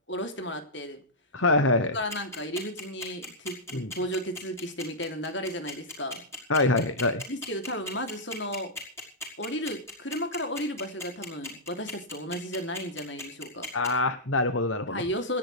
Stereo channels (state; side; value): normal; both; correlation -0.10